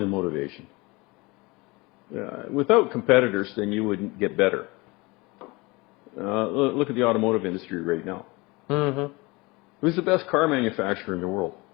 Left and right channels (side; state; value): right; quieter; 24.4 dB